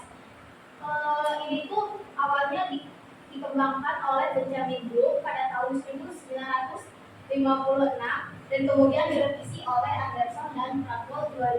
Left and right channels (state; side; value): identical; both; correlation 1.00